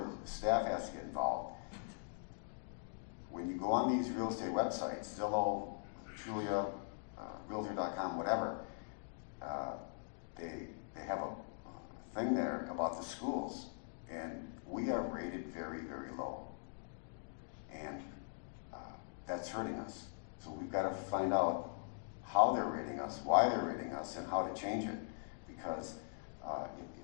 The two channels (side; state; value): right; silent; digital silence